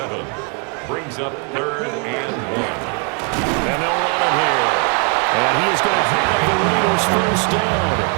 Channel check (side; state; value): left; quieter; 35.9 dB